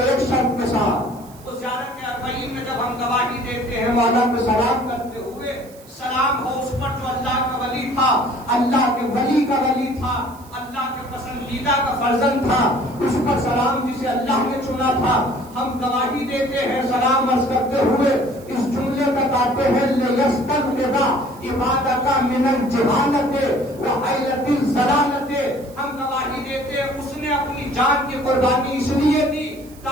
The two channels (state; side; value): noise; right; hiss, 24 dB below the sound